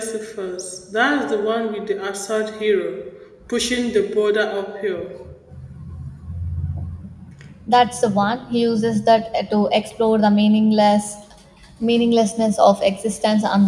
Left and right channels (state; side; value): identical; both; correlation 1.00